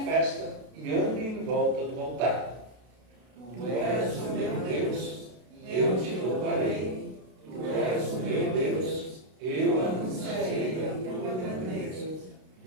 festa e andem em volta do altar. Tu és o meu Deus, eu te louvarei. Tu és o meu Deus, eu anunciarei a tua grandeza.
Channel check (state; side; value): late; left; 32 ms